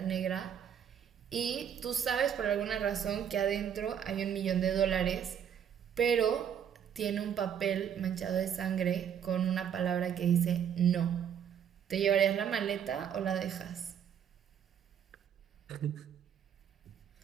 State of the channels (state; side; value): quieter; left; 8.6 dB